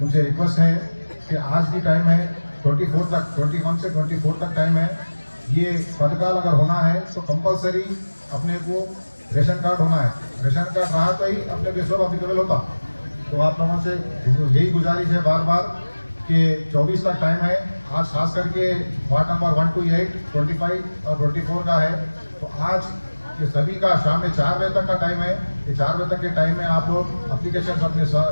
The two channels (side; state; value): both; inverted; correlation -1.00